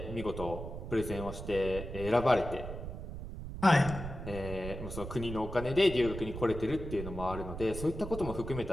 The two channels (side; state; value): right; noise; rumble, 8 dB below the sound